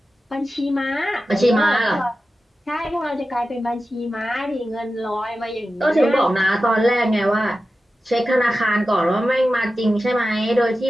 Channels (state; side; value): normal; both; correlation 0.93